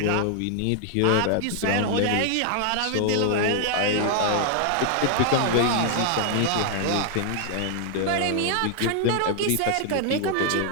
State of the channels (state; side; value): different; both; correlation 0.00